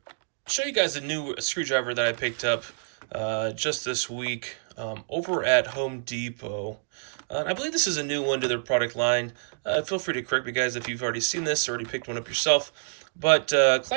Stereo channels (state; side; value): silent; left; digital silence